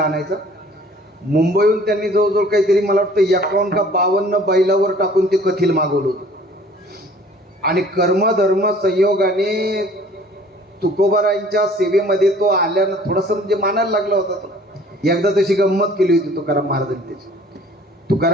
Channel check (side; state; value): both; normal; correlation 0.52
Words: आणायचा. मुंबईहून त्यांनी जवळजवळ काहीतरी मला वाटतं 51 का 52 बैलावर टाकून ते कथिल मागवलं होतं. आणि कर्मधर्म संयोगाने तुकोबरायांच्या सेवेमध्ये तो आल्यानं थोडंसं म्हणजे मानायला लागला होता तो. एकदा तशी गंमत केली होती तुकाराम महाराजांनी त्याची.